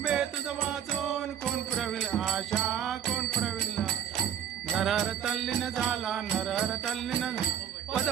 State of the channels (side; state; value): left; quieter; 9.2 dB